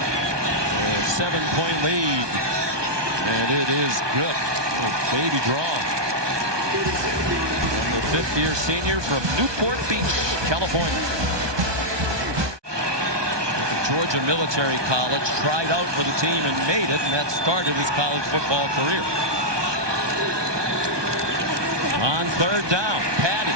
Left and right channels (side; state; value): left; late; 1.2 ms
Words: 7-point lead, and it is good. Oh, baby draw. And the 5th-year senior from Newport Beach, California. At the Georgia Military College, tried out for the team and made it, and that started his college football career. On 3rd down, Patty.